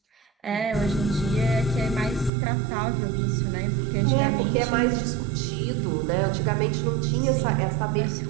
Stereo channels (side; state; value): left; drops out; at 2.3 s